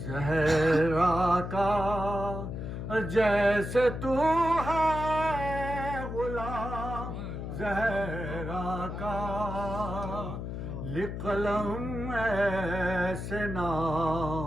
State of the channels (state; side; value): noise; left; hum, 6 dB below the sound